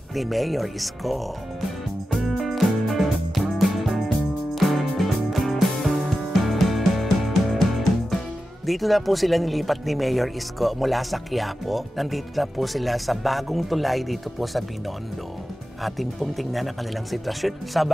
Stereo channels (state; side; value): normal; both; correlation 0.92